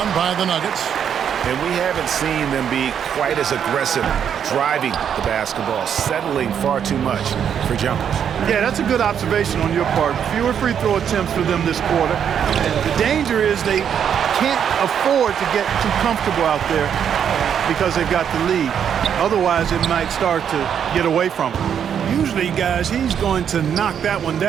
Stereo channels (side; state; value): left; quieter; 8.3 dB